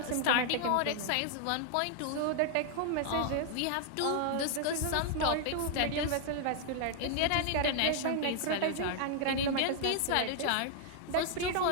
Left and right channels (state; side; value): different; both; correlation 0.00